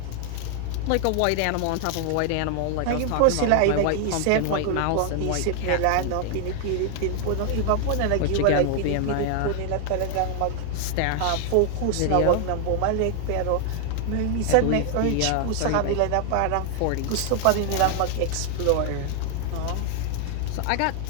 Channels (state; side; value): different; both; correlation 0.00